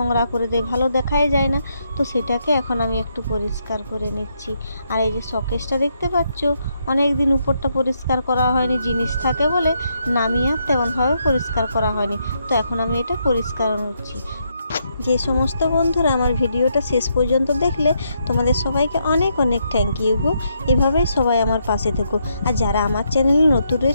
করে দেয়, ভালো দেখাই যায় না। তো সেটাকে এখন আমি একটু পরিষ্কার করে নিচ্ছি। আর এই যে শোকেসটা দেখতে পাচ্ছ, অনেক দিন উপরটা পরিষ্কার করা হয়নি, জিনিস থাকে বলে নামিয়ে আর তেমনভাবে পরিষ্কার করা হয়নি। তো এখন আমি এটা পরিষ্কার করছি। যে সমস্ত বন্ধুরা আমার ভিডিওটা শেষ পর্যন্ত দেখলে তোমাদের সবাইকে অনেক অনেক থ্যাংক ইউ গো। এভাবেই সবাই আমার পাশে থেকো। আর যারা আমার চ্যানেলে নতুন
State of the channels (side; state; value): both; inverted; correlation -0.77